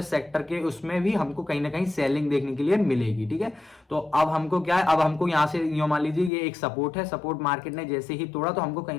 सेक्टर के उसमें भी हमको कहीं ना कहीं सेलिंग देखने के लिए मिलेगी, ठीक है। तो अब हमको क्या है, अब हमको यहाँ से यूं मान लीजिए ये एक सपोर्ट है, सपोर्ट मार्केट ने जैसे ही तोड़ा तो हमको कहीं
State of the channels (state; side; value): drops out; right; at 6.3 s